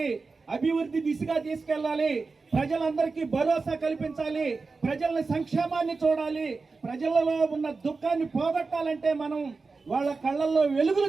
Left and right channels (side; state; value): left; quieter; 4.2 dB